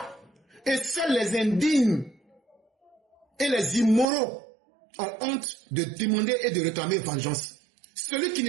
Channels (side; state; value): left; drops out; at 4.0 s